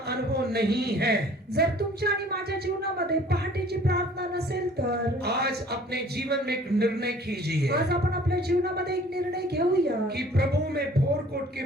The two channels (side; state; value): both; normal; correlation 0.52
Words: अनुभव नहीं है, जर तुमच्या आणि माझ्या जीवनामध्ये पहाटेची प्रार्थना नसेल तर आज अपने जीवन में एक निर्णय कीजिए आज आपण आपल्या जीवनामध्ये एक निर्णय घेऊया कि प्रभु मैं भोर को उठ के